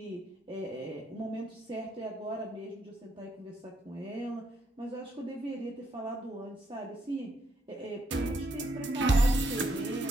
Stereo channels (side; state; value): both; normal; correlation 0.75